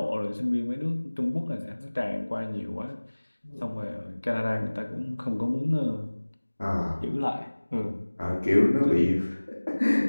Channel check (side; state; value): both; inverted; correlation -1.00